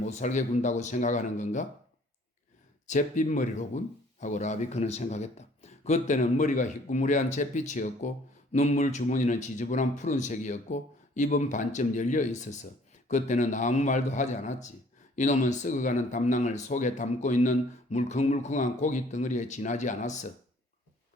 살게 군다고 생각하는 건가? 잿빛머리로군? 하고 라비크는 생각했다. 그때는 머리가 희꾸무레한 잿빛이었고 눈물 주머니는 지저분한 푸른색이었고 입은 반쯤 열려 있어서 그때는 아무 말도 하지 않았지. 이놈은 썩어가는 담낭을 속에 담고 있는 물컹물컹한 고기 덩어리에 지나지 않았어.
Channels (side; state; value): both; normal; correlation 0.57